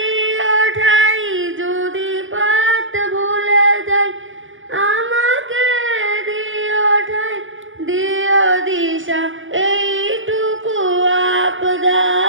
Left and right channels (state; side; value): late; left; 0.57 ms